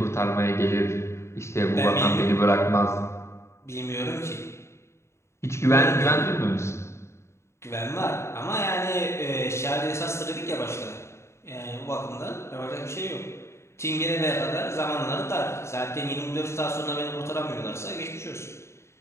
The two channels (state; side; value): late; right; 0.13 ms